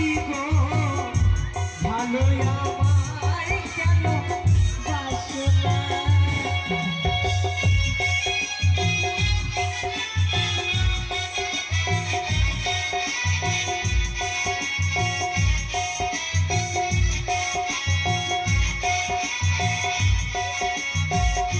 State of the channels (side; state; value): both; identical; correlation 1.00